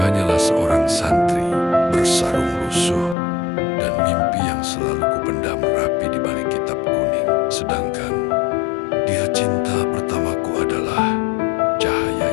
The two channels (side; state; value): right; drops out; at 3.2 s